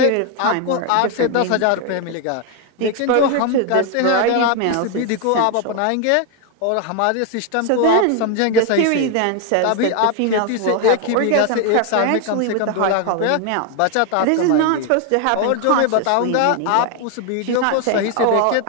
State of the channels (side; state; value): both; different; correlation 0.01